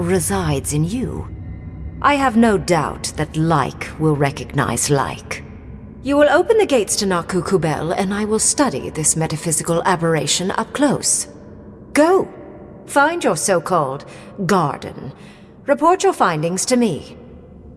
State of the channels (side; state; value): both; identical; correlation 1.00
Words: in you. I have no doubt that like will recognize like. You will open the gates to Naku Kubel, and I will study this metaphysical aberration up close. Go. Find your so-called garden. Report your findings to me.